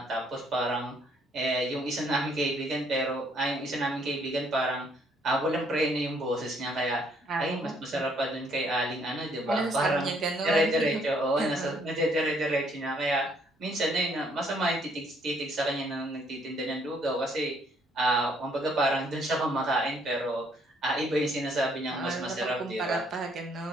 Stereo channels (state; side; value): normal; both; correlation 0.67